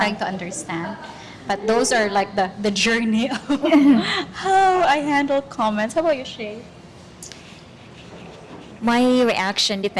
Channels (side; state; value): both; identical; correlation 1.00